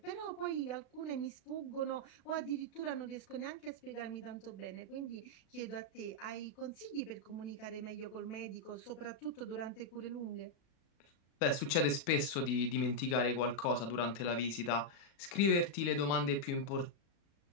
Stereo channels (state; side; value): late; right; 36 ms